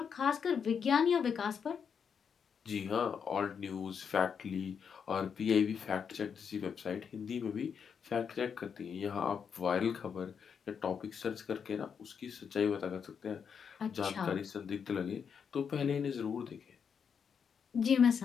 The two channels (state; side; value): quieter; right; 6.8 dB